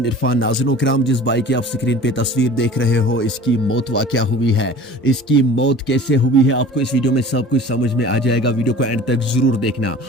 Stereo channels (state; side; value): normal; both; correlation 0.42